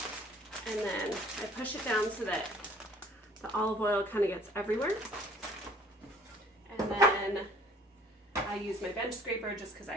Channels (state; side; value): normal; both; correlation 0.55